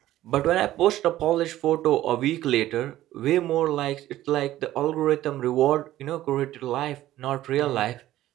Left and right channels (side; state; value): left; quieter; 14.4 dB